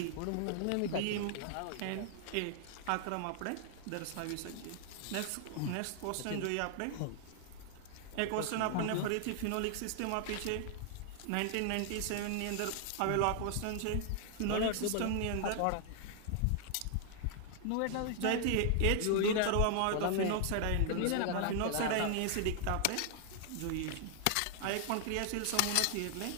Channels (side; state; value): both; different; correlation 0.00